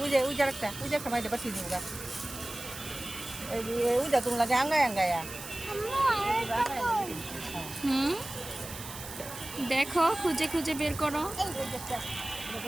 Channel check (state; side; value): noise; right; hiss, 11 dB below the sound